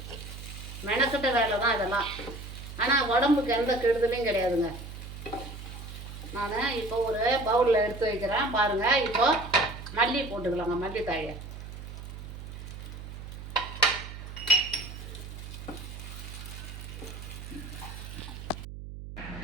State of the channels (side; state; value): right; noise; hum, 11 dB below the sound